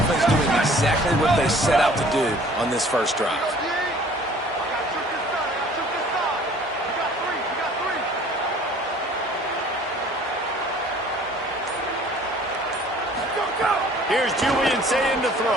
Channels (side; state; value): both; normal; correlation 0.52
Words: doing exactly what they set out to do on this first drive. Here's Julian saying to